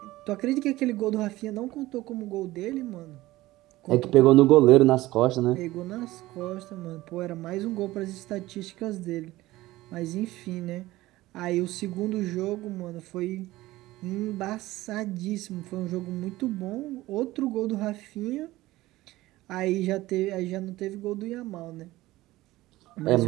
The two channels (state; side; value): quieter; left; 17.6 dB